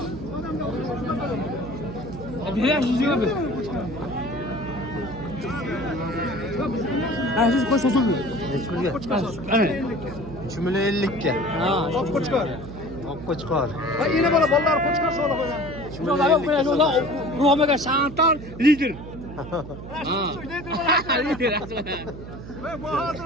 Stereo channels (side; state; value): right; noise; hum, 12 dB below the sound